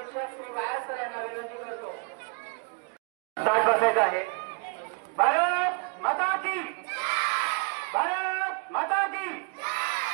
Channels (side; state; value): left; quieter; 33.4 dB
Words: श्री वाया सर यांना विनंती करतो. साठ बसायचं आहे. भारत माता की, भारत माता की.